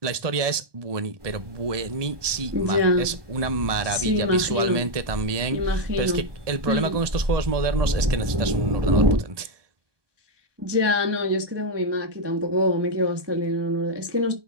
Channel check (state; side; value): late; left; 1.2 ms